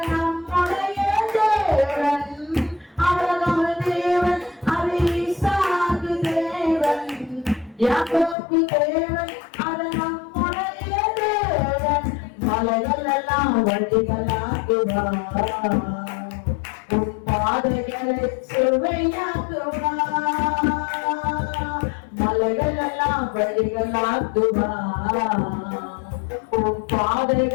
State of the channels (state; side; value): drops out; right; at 8.3 s